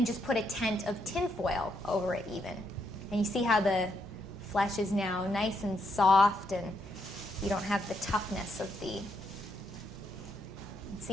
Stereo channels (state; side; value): normal; both; correlation 0.77